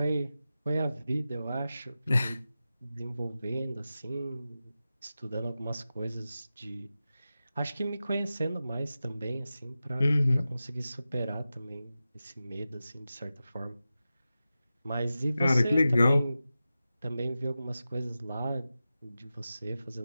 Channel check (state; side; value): inverted; both; correlation -0.93